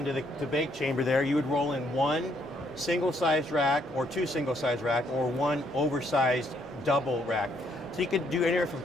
the bake chamber there. You would roll in one single-sized rack or two single-sized rack or one oversized double rack. So you could do anywhere from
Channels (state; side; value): normal; both; correlation 0.70